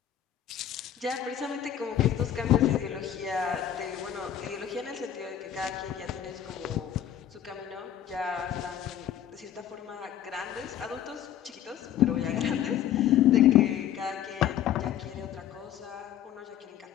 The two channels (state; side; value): quieter; right; 10.4 dB